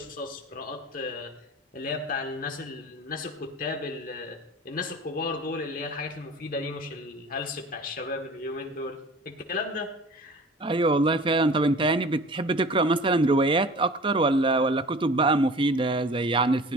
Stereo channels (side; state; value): both; normal; correlation 0.42